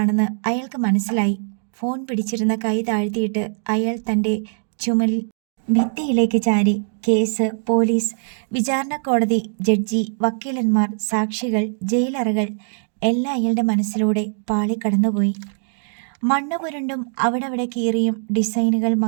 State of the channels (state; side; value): silent; left; digital silence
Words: അയാൾക്ക് മനസ്സിലായി. ഫോൺ പിടിച്ചിരുന്ന കൈ താഴ്ത്തിയിട്ട് അയാൾ തൻ്റെ ചുമലിൽ ഭിത്തിയിലേക്ക് ചാരി. കേസ്, പോലീസ്, വിചാരണ കോടതി, ജഡ്ജി, വക്കീലന്മാർ, സാക്ഷികൾ, ജയിലറകൾ എല്ലാം അയാളുടെ മനസ്സിലൂടെ പാളിക്കടന്നുപോയി. മണ്ണ് പുരണ്ടും അവിടെ കീറിയും ഡിസൈനുകൾ